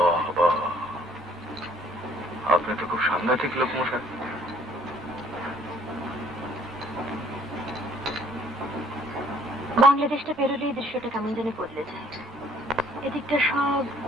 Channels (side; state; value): both; normal; correlation 0.59